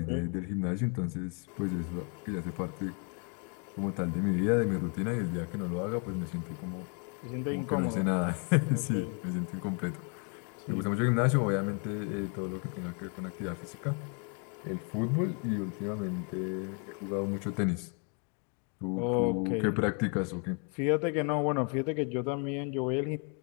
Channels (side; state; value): right; quieter; 38.1 dB